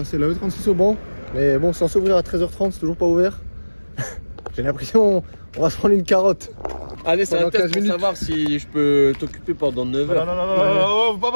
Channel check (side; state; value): both; inverted; correlation -1.00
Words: la E36 au banc. Mais bon, c'est censé ouvrir à 13h30, c'est toujours pas ouvert. J'ai l'impression on va se prendre une carotte. Allez, c'est un test pour minutes. savoir si je peux t'occuper pendant 9 heures. Non, faut pas